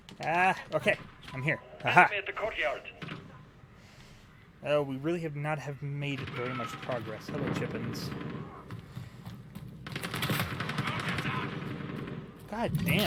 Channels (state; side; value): identical; both; correlation 1.00